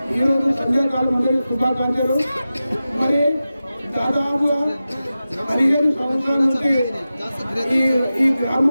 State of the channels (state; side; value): inverted; both; correlation -0.94